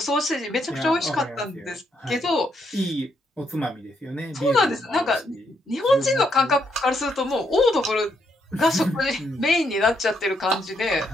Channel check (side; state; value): both; normal; correlation 0.76